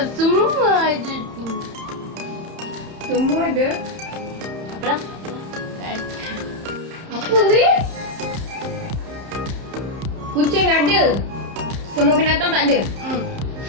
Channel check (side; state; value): left; late; 31 ms